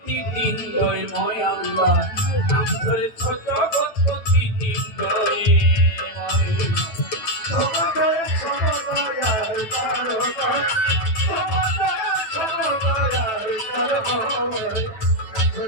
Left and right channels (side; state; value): right; late; 9.1 ms